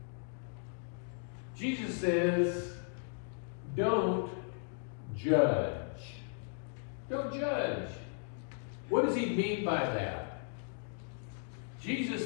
Jesus says, don't judge. Don't judge. What does he mean by that?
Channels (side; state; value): right; silent; 54 dB below the other